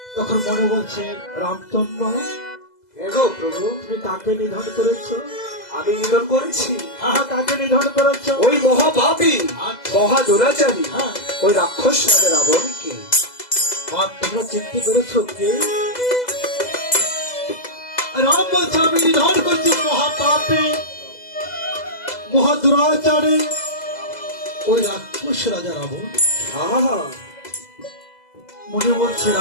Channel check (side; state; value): right; late; 2.0 ms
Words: তখন মনে বলছে, রামচন্দ্র এগো প্রভু, তুমি কাকে নিধন করেছ? আমি নিধন করেছি? হ্যাঁ, কাকে নিধন করেছ? ওই মহাপাপী, মহা দুরাচারী, হ্যাঁ, ওই রাক্ষস রাজা রাবণকে। আর তোমরা চিনতে পেরেছ কে? রাম বলছে, আমি নিধন করছি মহাপাপী, মহা দুরাচারী, ওই রাক্ষস রাজা রাবণ। আহা, মনে বলছে,